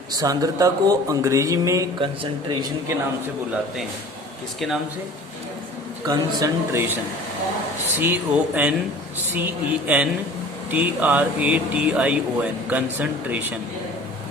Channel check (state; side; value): normal; both; correlation 0.43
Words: सांद्रता को अंग्रेजी में कंसंट्रेशन के नाम से बुलाते हैं। किसके नाम से? कंसंट्रेशन। CONCENTRATION concentration.